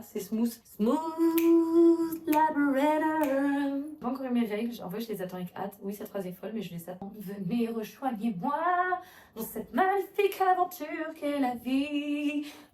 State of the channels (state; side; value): identical; both; correlation 1.00